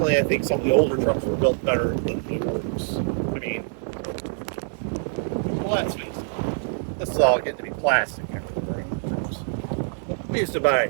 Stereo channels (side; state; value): left; silent; 62 dB below the other